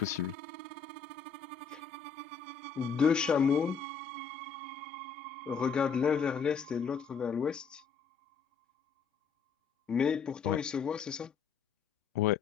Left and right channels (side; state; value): right; quieter; 6.2 dB